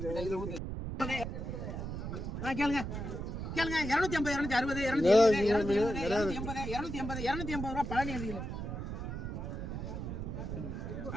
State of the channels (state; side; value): noise; right; rumble, 5 dB below the sound